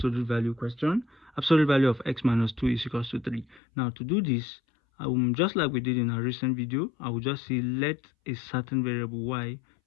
value question. Absolute value of x minus 2 is equals to 3. Now to do this, just like we did in our recent video, I will just say let a certain variable y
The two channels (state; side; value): drops out; right; at 3.6 s